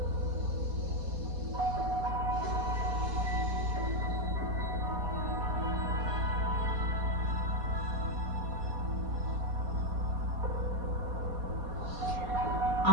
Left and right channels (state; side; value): late; left; 4.2 ms